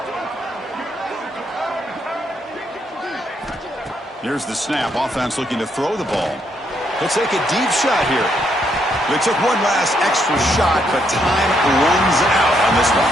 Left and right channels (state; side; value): normal; both; correlation 0.75